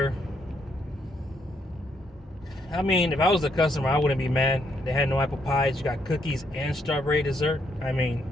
I mean, if I was the customer, I wouldn't be mad. They had no apple pies. You got cookies and strawberry dessert. I mean,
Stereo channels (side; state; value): both; normal; correlation 0.74